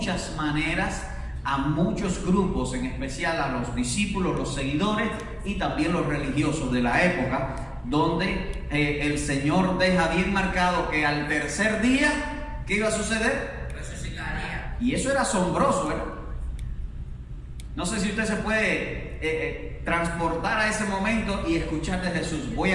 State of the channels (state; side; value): identical; both; correlation 1.00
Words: maneras a muchos grupos, en especial a los discípulos, los seguidores y también los religiosos de la época, donde el Señor deja bien marcado que al tercer día, ¿qué iba a suceder? Resucitaría. Y eso era asombroso, ¿verdad? No sé si usted se puede transportar a ese momento y escuchar de Jesús: voy